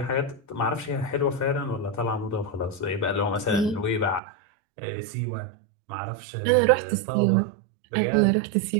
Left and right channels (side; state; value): left; drops out; at 4.2 s